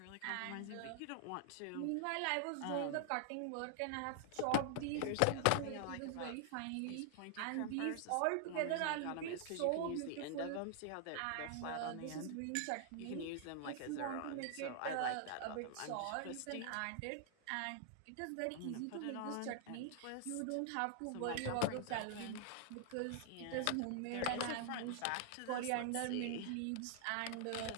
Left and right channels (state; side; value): different; both; correlation -0.01